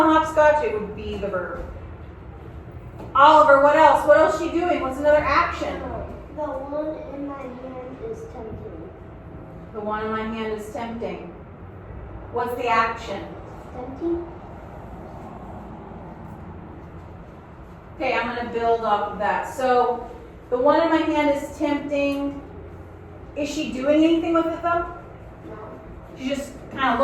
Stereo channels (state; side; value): identical; both; correlation 1.00